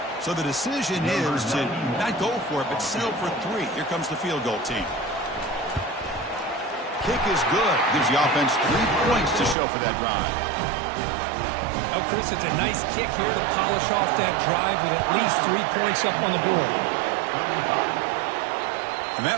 So the decision is to not go for it, but settle for 3. Here comes the field goal team. Kick is good. Gives the offense 3 points to show for that drive. Oh, Chris, it's a nice kick here to polish off that drive with at least 3 points up on the board. And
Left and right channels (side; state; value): left; drops out; at 9.6 s